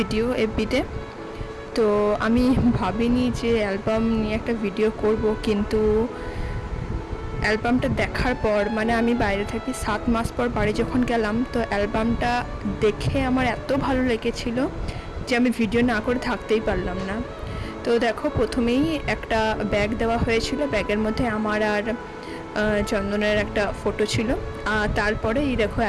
এফবিতে। তো আমি ভাবিনি যে অ্যালবাম নিয়ে একটা ভিডিও করব, কিন্তু অ্যালবামটা দেখার পর, মানে আমি বাইরে থাকি 7 মাস পর বাড়ি যখন গেলাম, তো অ্যালবামটা দেখে আমার এত ভালো লেগেছিল যে আমি ভিডিও না করে থাকতেই পারলাম না। তো দেখো, প্রথমেই একটা ব্যাগ দেওয়া হয়েছিল, ব্যাগের মধ্যে আমার আর চন্দনের একটা ফটো ছিল। আর তারপরে এই দেখো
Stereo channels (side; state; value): both; identical; correlation 1.00